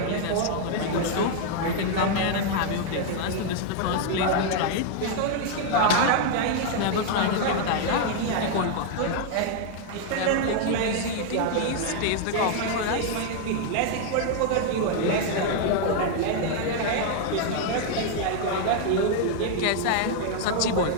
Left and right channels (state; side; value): different; both; correlation 0.00